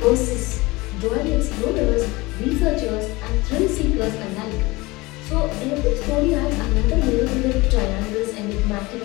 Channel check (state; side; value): quieter; right; 22.3 dB